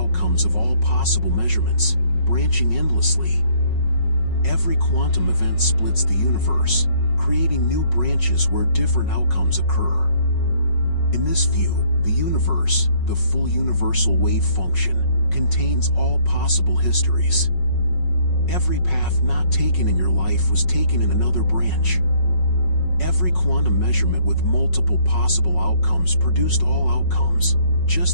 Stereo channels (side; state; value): right; late; 5.4 ms